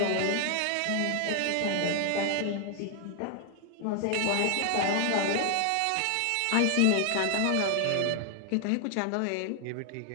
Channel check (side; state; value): both; different; correlation 0.00